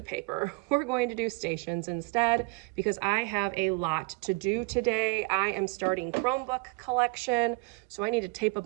paper. We're going to do stations instead because I have a lot to do today. I am starting Chromebook collection, so I need to tape a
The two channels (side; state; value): left; quieter; 27.9 dB